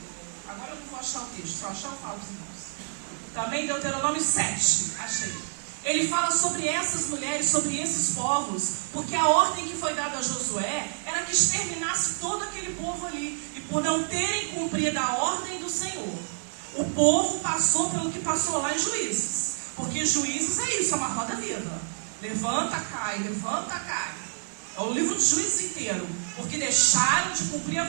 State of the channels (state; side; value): silent; left; digital silence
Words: agora eu não vou achar o texto, só achar eu falo para os irmãos. Também Deuteronômio 7, achei. Ele fala sobre essas mulheres, sobre esses povos, porque a ordem que foi dada a Josué era que exterminasse todo aquele povo ali. E por não terem cumprido a ordem do Senhor, o povo passou pelo que passou lá em Juízes. Porque Juízes é isso, é uma roda viva. Levanta, cai, levanta, cai. É o livro de Juízes inteiro. Porque deixaram de cumprir a